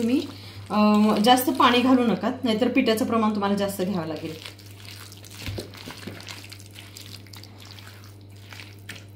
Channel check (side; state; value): both; identical; correlation 1.00